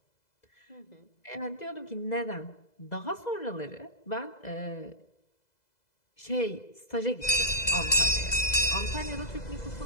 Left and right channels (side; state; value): right; late; 2.0 ms